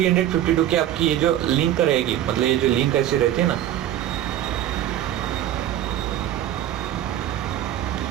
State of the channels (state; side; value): quieter; left; 12.0 dB